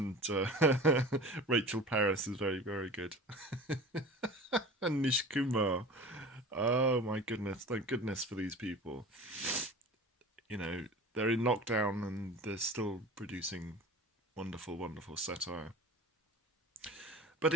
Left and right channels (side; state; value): both; normal; correlation 0.37